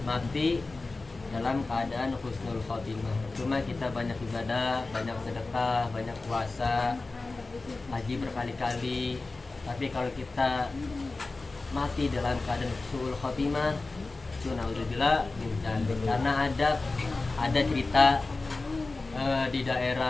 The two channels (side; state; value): right; quieter; 3.5 dB